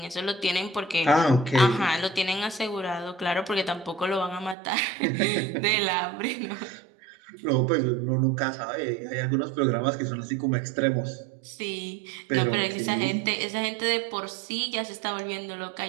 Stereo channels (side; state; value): left; drops out; at 4.5 s